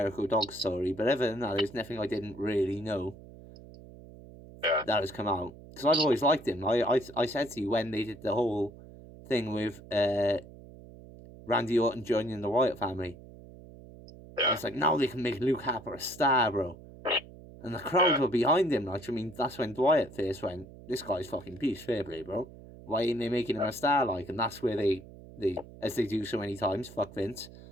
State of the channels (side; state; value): right; noise; hum, 18 dB below the sound